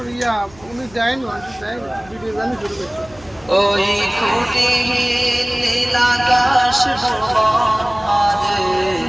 ইয়া উনি যায় না ভিডিও জানি শুরু করছে ওই কোটি নীল আকাশ ভুবন মাঝে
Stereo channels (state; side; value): noise; left; hum, 24 dB below the sound